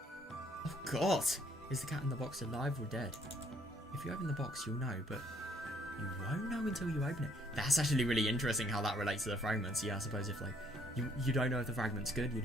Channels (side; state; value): both; normal; correlation 0.65